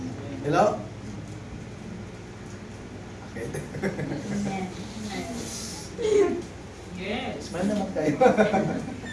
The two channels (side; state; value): both; identical; correlation 1.00